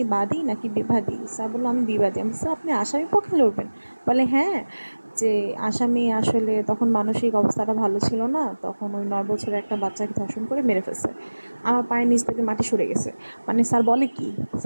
বাদী নাকি বিবাদী? স্যার বললো আমি বিবাদী। আমি স্যার আপনি আসামি পক্ষে লড়বেন? বলে হ্যাঁ, যে আসামি আসলে তখন মানসিক অবস্থাটা ভালো ছিল না, তখন ওই 9 বছরের একটা বাচ্চাকে ধর্ষণ করে মেরে ফেলছে। আমার পায়ের নিচ থেকে মাটি সরে গেছে। মানে স্যার বলে কি,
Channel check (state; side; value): inverted; both; correlation -1.00